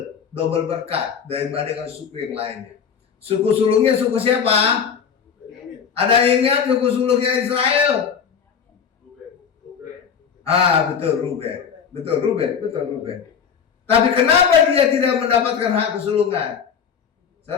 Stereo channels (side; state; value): right; quieter; 7.1 dB